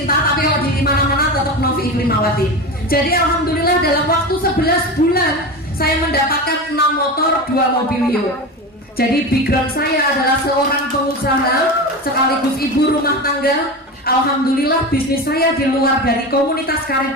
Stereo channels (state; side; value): normal; both; correlation 0.25